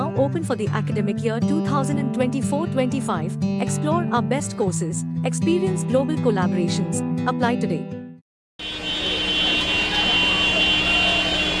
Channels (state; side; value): identical; both; correlation 1.00